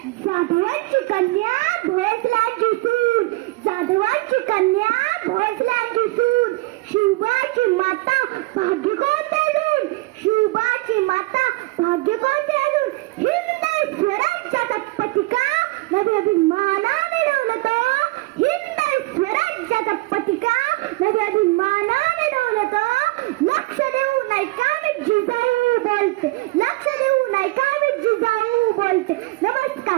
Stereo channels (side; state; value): left; quieter; 22.0 dB